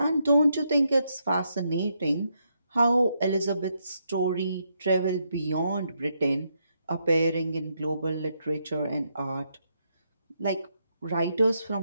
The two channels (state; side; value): inverted; both; correlation -0.79